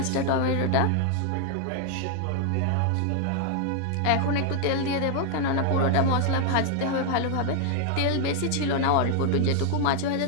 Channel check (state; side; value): different; both; correlation 0.00